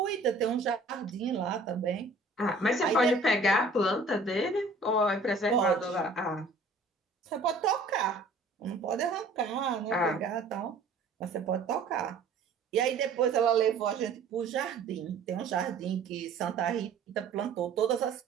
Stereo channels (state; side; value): quieter; left; 3.4 dB